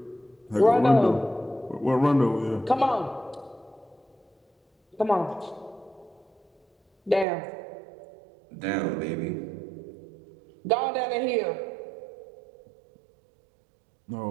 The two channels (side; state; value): left; drops out; at 7.2 s